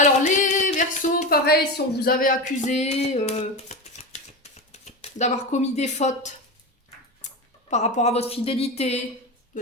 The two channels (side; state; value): both; normal; correlation 0.21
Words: les Verseaux, pareil, si on vous avait accusé d'avoir commis des fautes par rapport à votre fidélité, de